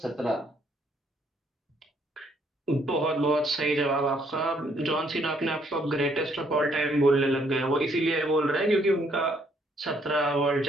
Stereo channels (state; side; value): normal; both; correlation 0.68